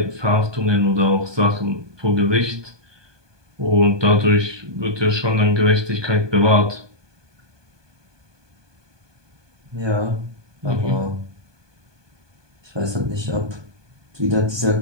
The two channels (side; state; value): left; late; 1.2 ms